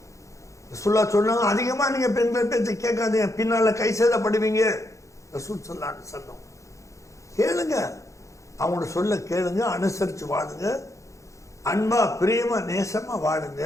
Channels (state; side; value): late; right; 0.15 ms